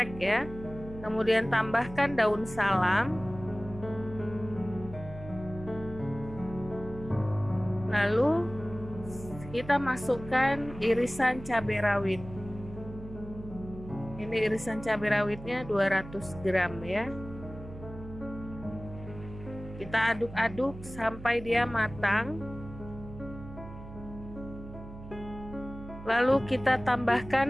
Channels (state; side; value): noise; right; hum, 14 dB below the sound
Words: ya. Kemudian tambahkan daun salam, lalu kita masukkan irisan cabai rawit. Ini irisan cabai rawitnya 200 gram ya. Kita aduk-aduk sampai dia matang. Lalu kita